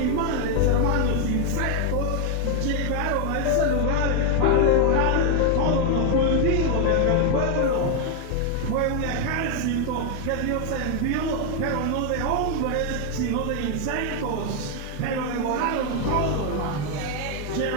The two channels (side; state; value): both; different; correlation 0.01